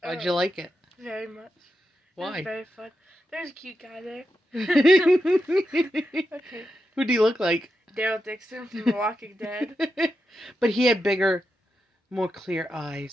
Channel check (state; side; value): normal; both; correlation 0.87